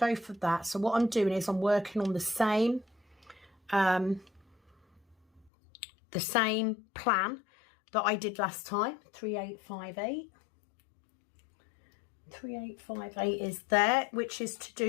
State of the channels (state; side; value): drops out; right; at 5.5 s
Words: for that. So what I'm doing is I'm working on the same plan that I did last time. 3858. 3858 is there, which is to